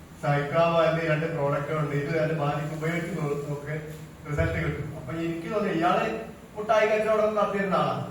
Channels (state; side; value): identical; both; correlation 1.00